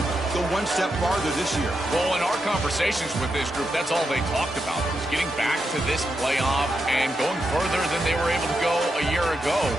go one step farther this year. Well, in our conversations with this group, that's all they talked about, was getting back to this playoff and going further than they were able to go a year ago.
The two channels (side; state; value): both; normal; correlation 0.85